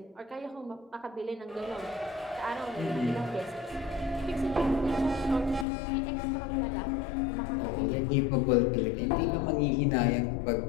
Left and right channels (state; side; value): drops out; right; at 5.7 s